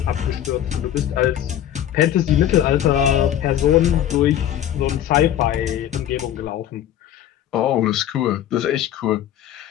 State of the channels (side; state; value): right; quieter; 11.2 dB